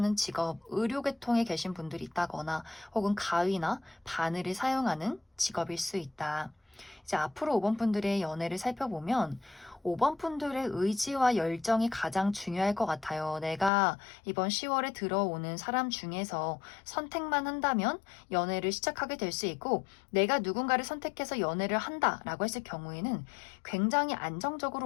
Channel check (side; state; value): right; drops out; at 13.7 s